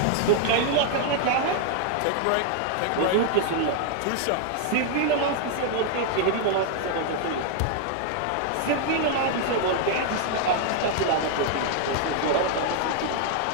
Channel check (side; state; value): both; different; correlation 0.00